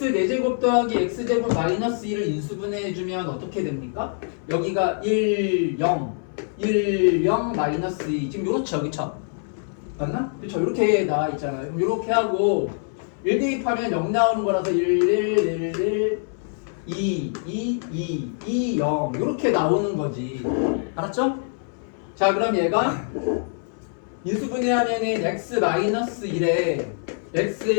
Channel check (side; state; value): right; silent; 62 dB below the other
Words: 4제곱 더하기 x제곱 마이너스 2를 인수분해해주면 어떻게 됩니까? 여기가 1, 0, 1, 0, 마이너스 2. 지금 요렇죠, 그쵸? 맞나? 그쵸? 이렇게 나와 있잖아요. 그럼 이렇게 하고 1 대입하면 0 나오는 거라서 1, 1, 1, 1, 2, 2, 2, 2, 0 이렇게 나오는 거지. 알았죠? 자, 그럼 얘가 인수분해하면은 x-1에